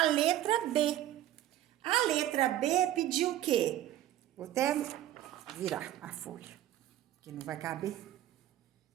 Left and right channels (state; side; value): quieter; left; 13.0 dB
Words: a letra B. A letra B pediu o quê? Vou até virar a folha, que não vai caber. O